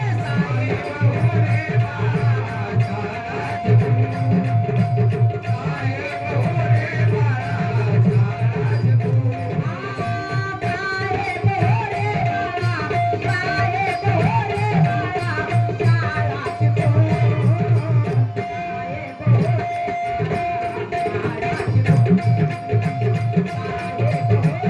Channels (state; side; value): identical; both; correlation 1.00